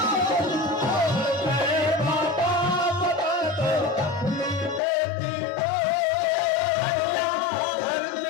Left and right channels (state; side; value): drops out; right; at 4.8 s